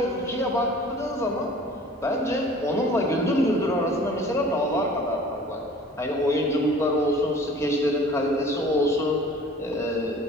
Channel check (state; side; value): normal; both; correlation 0.47